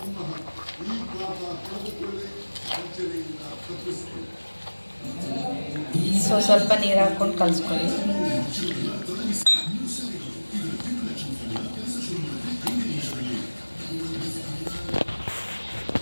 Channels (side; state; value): both; inverted; correlation -1.00